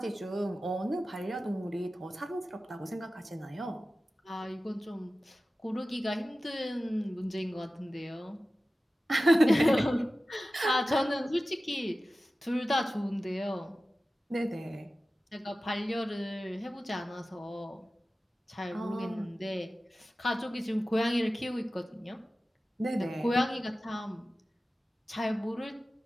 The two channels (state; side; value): normal; both; correlation 0.95